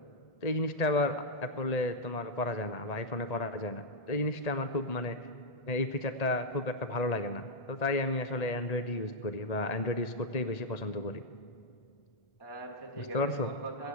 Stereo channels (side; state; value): right; late; 1.8 ms